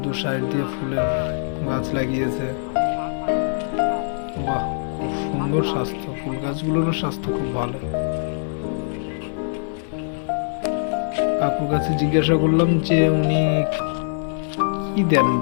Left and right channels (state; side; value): silent; right; digital silence